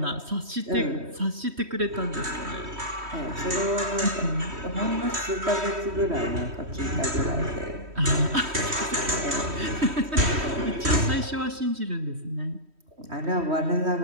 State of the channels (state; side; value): late; left; 3.1 ms